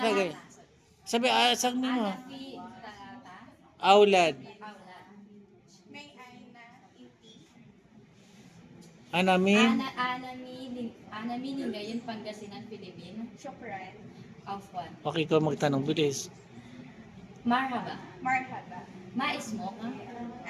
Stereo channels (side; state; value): both; identical; correlation 1.00